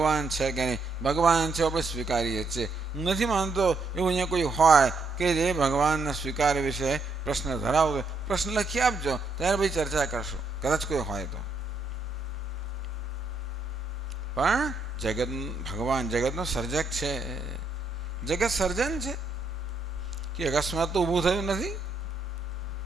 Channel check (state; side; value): quieter; left; 3.3 dB